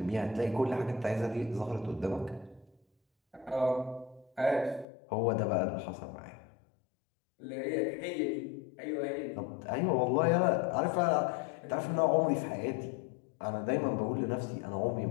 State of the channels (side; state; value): right; drops out; at 4.9 s